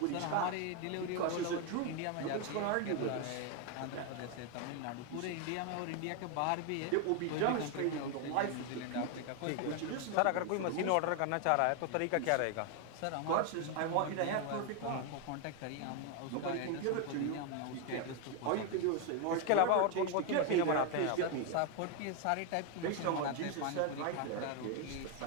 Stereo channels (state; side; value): different; both; correlation 0.01